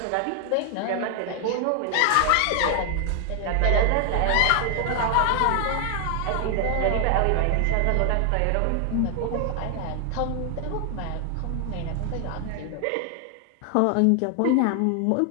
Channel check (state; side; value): different; both; correlation 0.00